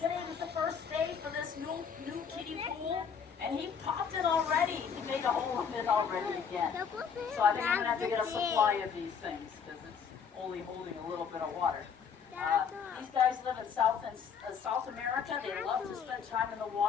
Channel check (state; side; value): quieter; right; 6.8 dB